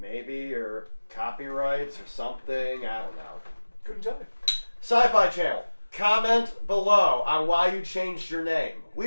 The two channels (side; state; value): both; inverted; correlation -1.00